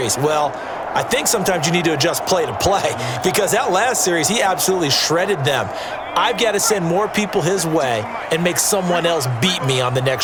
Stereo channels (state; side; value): identical; both; correlation 1.00